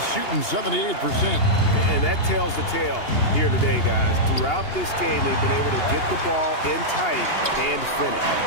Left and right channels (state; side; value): late; right; 2.8 ms